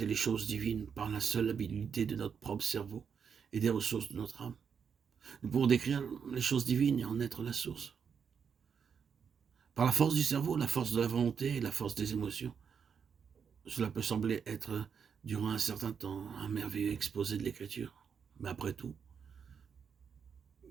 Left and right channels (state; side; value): quieter; left; 6.8 dB